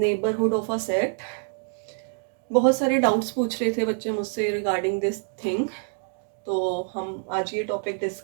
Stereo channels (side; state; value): left; silent; 61 dB below the other